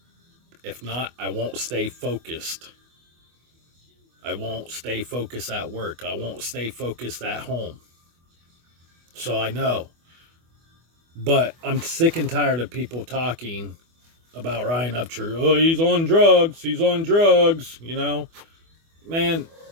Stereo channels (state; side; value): late; left; 24 ms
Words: If not, I won't stay focused. I won't stay focused at work. I won't stay focused at home. So I know. But I'm sick and tired of people talking about Ryan Upchurch. Oh, he's on drugs. He's on drugs. You know, man,